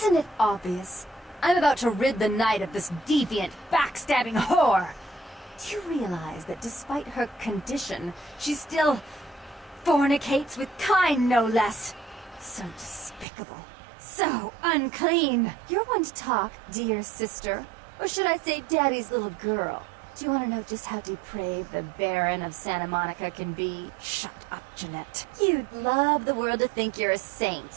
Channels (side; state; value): left; drops out; at 13.2 s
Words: it obvious? I'm about to rid the night of this deviant, backstabbing whore. Do you realize that despite her condition, she still fornicates with kind, no less? So despicable. So unclean. You're one to talk, dear sister. Or should I say daddy's little girl? Do you want to know just how depraved the Baron of Santa Monica can be? Shut up, Jeanette. You'd love the world to think you're a